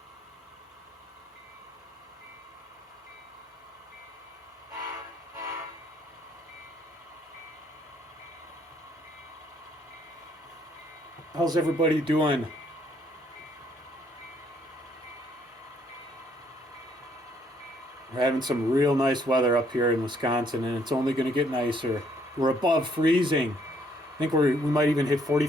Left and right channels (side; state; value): both; normal; correlation 0.67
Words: How's everybody doing? We're having some real nice weather up here in Wisconsin, and it's only going to get nicer. We're above freezing. I think we might even hit